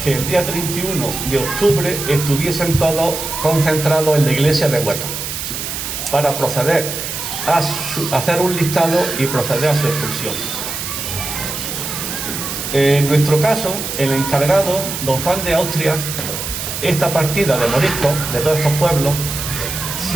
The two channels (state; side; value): noise; right; hiss, 5 dB below the sound